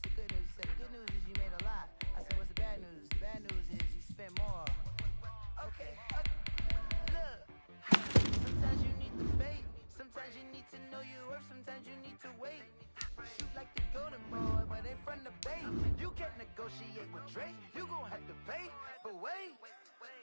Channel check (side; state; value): both; inverted; correlation -1.00